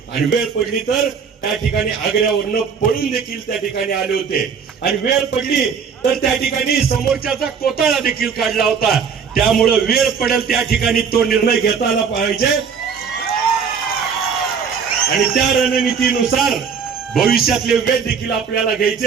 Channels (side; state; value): left; quieter; 6.4 dB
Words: आणि वेळ पडली तर त्या ठिकाणी आग्र्यावरनं पळून देखील त्या ठिकाणी आले होते आणि वेळ पडली तर त्या ठिकाणी समोरच्याचा कोटाळा देखील काढला होता. त्यामुळे वेळ पडेल त्या ठिकाणी तो निर्णय घेता आला पाहिजे आणि त्या रणनीतीनुसार भविष्यातले वेळ देखील आपल्याला